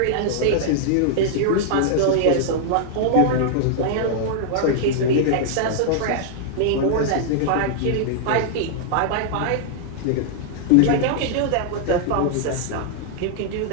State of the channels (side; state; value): both; different; correlation -0.01